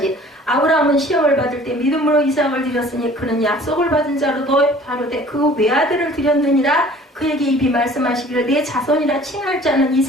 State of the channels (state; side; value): normal; both; correlation 0.50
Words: 아브라함은 시험을 받을 때 믿음으로 이삭을 드렸으니 그는 약속을 받은 자로도 다르되 그 외아들을 드렸느니라. 그에게 입이 말씀하시기를 내 자손이라 칭할 자는